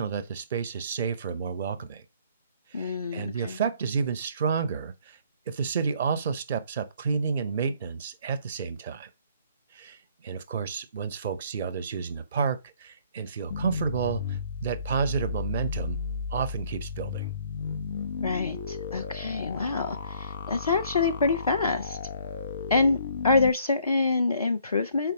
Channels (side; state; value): both; inverted; correlation -0.61